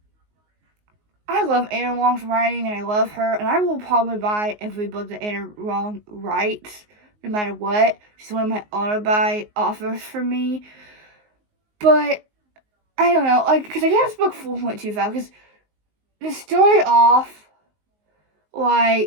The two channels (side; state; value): left; late; 19 ms